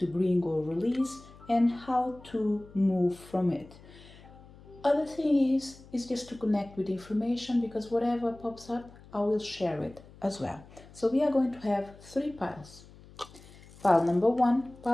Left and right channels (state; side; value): noise; left; hum, 22 dB below the sound